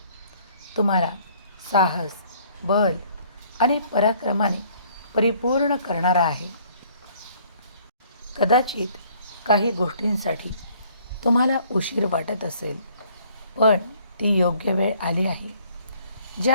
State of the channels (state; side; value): inverted; both; correlation -0.60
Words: तुम्हाला साहस, बल आणि पराक्रमाने परिपूर्ण करणारा आहे. कदाचित काही गोष्टींसाठी तुम्हाला उशीर वाटत असेल, पण ती योग्य वेळ आली आहे